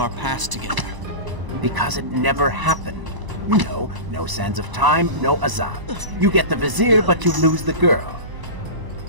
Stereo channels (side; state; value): left; late; 1.0 ms